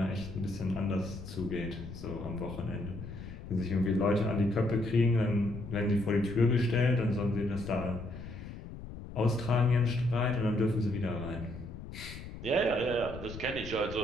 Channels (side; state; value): left; noise; rumble, 11 dB below the sound